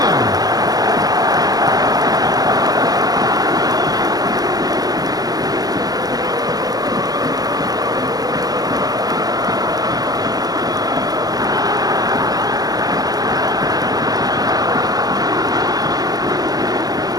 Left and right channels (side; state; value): left; late; 0.18 ms